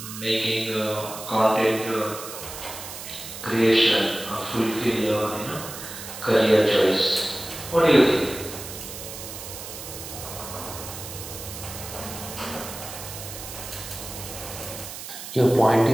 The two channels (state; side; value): noise; right; hiss, 10 dB below the sound